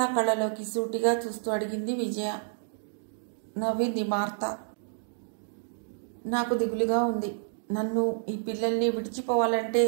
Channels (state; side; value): silent; left; digital silence